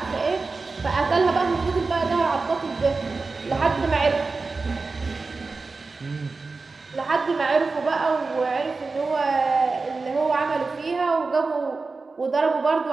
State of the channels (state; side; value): quieter; left; 4.0 dB